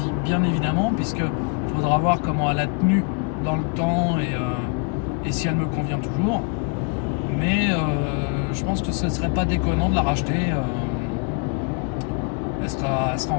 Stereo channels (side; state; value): right; quieter; 35.7 dB